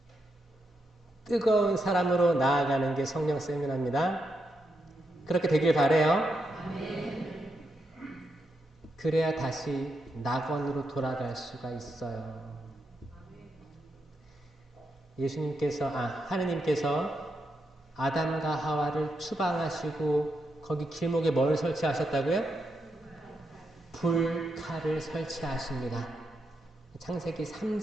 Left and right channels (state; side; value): normal; both; correlation 0.83